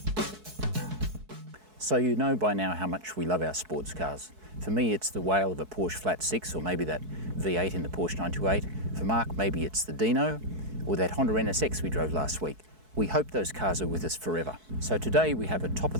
So you know by now how much we love our sports cars. For me, it's the whale of a Porsche Flat 6, or maybe that V8 in the Porsche 928. For Mark, maybe it's the Dino, or that Honda NSX we drove last week. We hope those cars are with us forever. So today we have a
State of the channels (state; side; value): late; left; 4.6 ms